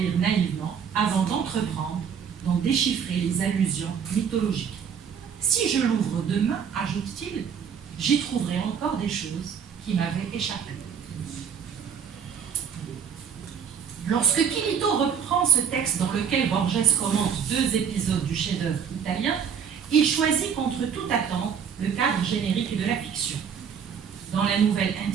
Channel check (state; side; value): quieter; left; 7.4 dB